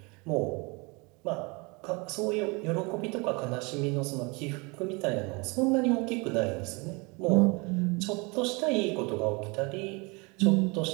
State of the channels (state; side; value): quieter; left; 28.4 dB